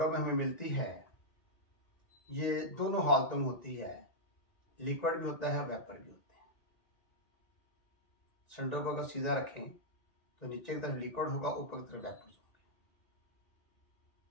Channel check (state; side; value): late; right; 1.9 ms